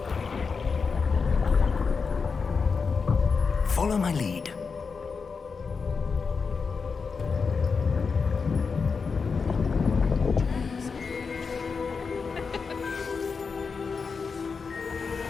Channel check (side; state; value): right; quieter; 5.2 dB